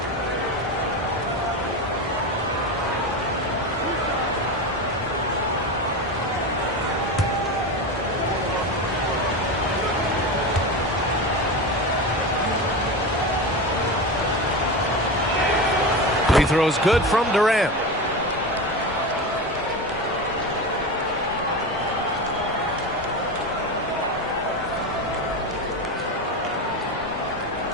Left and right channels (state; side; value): normal; both; correlation 0.21